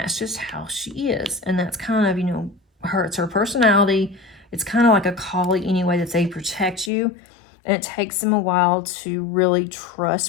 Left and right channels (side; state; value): right; drops out; at 6.9 s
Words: just how she is. And that's kind of, it's her personality. It's kind of like a collie anyway, that they protect you. And it takes them a while to really